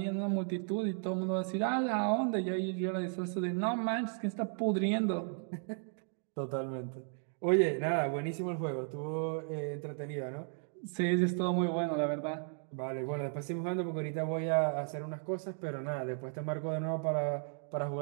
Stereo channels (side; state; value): left; silent; 55 dB below the other